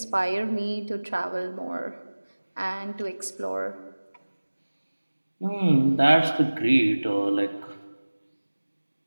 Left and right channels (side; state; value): both; inverted; correlation -1.00